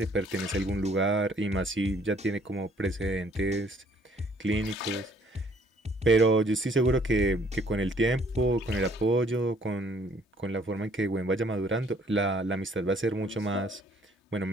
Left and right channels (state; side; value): normal; both; correlation 0.62